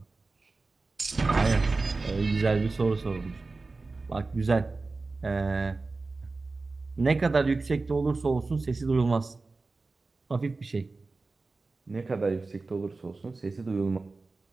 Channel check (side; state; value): left; quieter; 3.7 dB